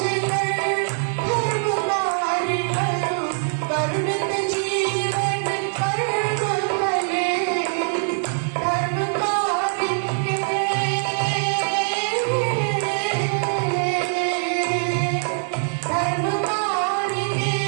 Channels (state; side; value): silent; left; 58 dB below the other